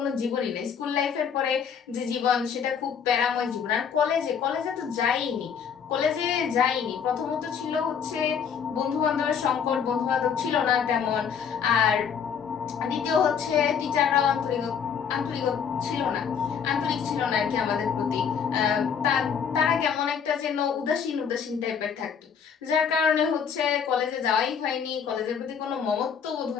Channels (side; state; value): right; quieter; 7.2 dB